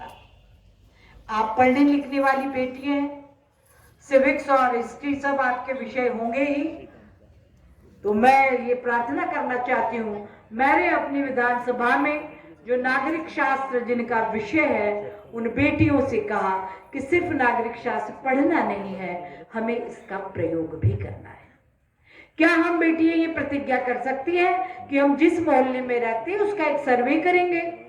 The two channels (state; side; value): identical; both; correlation 1.00